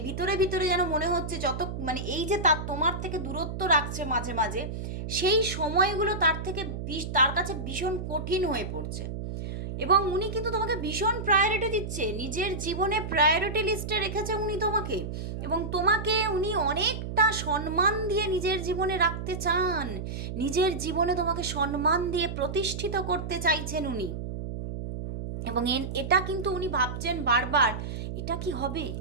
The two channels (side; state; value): right; noise; hum, 6 dB below the sound